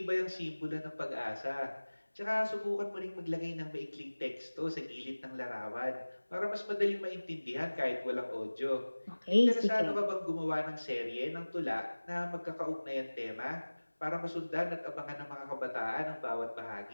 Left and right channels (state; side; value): inverted; both; correlation -1.00